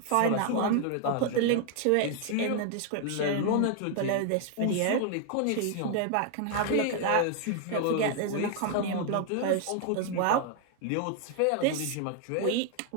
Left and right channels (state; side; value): different; both; correlation 0.00